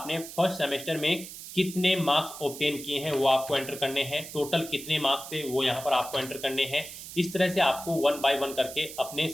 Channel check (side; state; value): right; noise; hiss, 12 dB below the sound